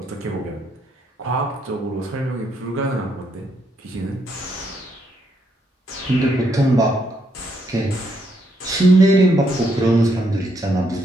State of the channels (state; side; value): normal; both; correlation 0.75